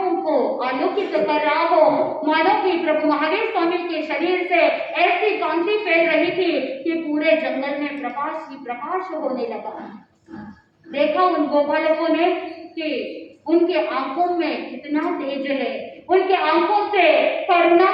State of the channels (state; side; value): identical; both; correlation 1.00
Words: को आलोकित कर रहा हो, मानो कि प्रभु महावीर स्वामी के शरीर से ऐसी कांति फैल रही थी कि पूरे जंगल में प्रकाश ही प्रकाश होने लगा। देखा उन गोपालकों ने कि उनके आंखों में कितना तेज है, उनके आंखों से करुणा